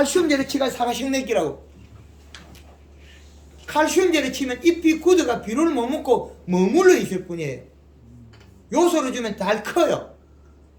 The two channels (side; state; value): both; identical; correlation 1.00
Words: 치가 사과 식내기라고. 칼슘제를 치면 잎이 굳어가 비료를 못 먹고 머물러 있을 뿐이에요. 요소를 주면 잘 커요.